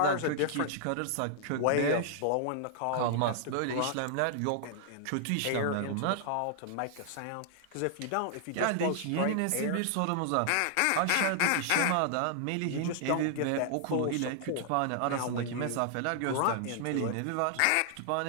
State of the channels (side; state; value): both; different; correlation -0.01